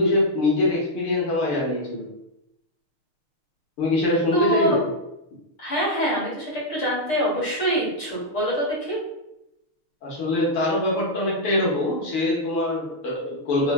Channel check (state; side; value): late; right; 6.6 ms